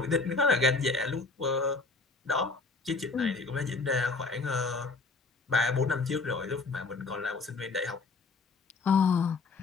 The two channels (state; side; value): quieter; right; 3.9 dB